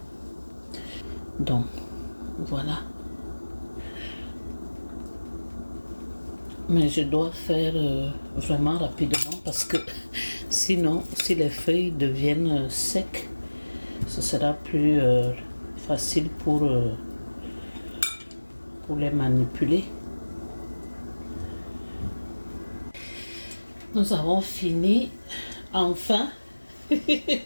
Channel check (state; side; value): inverted; both; correlation -1.00